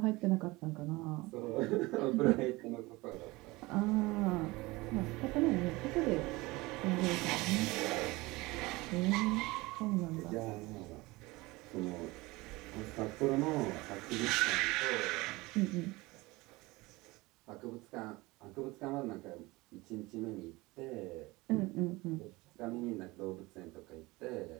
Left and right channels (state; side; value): quieter; left; 21.9 dB